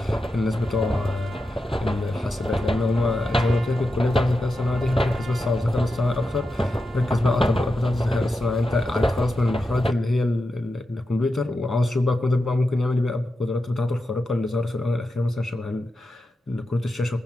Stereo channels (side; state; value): both; normal; correlation 0.89